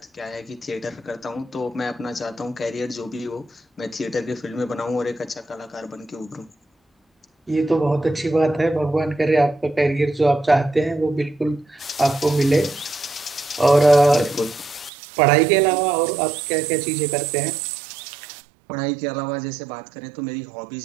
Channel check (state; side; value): drops out; left; at 14.9 s